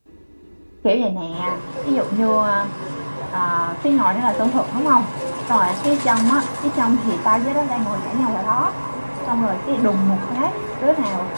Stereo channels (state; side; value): inverted; both; correlation -1.00